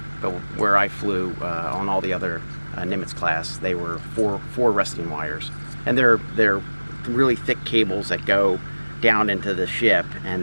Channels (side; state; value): both; inverted; correlation -1.00